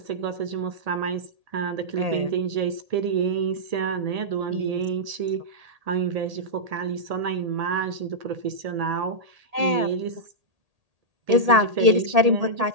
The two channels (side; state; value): left; late; 1.8 ms